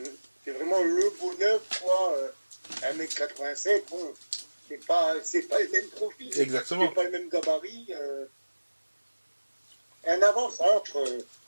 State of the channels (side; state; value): both; inverted; correlation -1.00